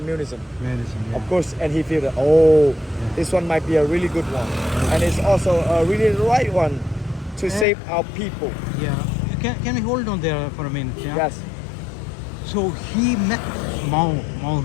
Medicine. Yeah. Of course, and he feel that, this one might be a really good one. And it's also a really right one to save our people. Yeah. Can we hold on there for a minute? Yeah? Yes. So he met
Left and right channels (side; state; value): right; drops out; at 7.7 s